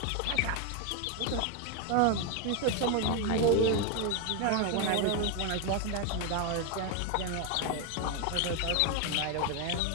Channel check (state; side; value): different; both; correlation 0.01